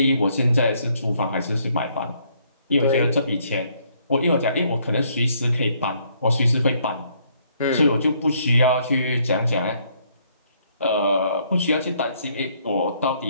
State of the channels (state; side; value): inverted; both; correlation -0.68